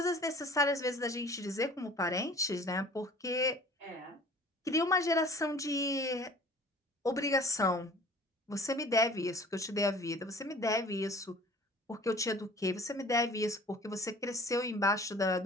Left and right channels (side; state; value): both; normal; correlation 0.47